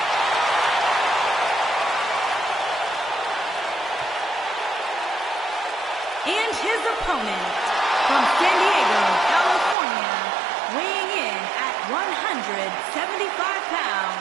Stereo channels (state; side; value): drops out; left; at 9.8 s